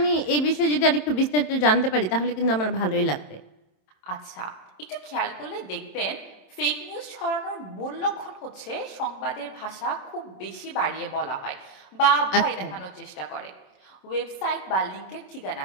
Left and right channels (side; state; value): right; late; 27 ms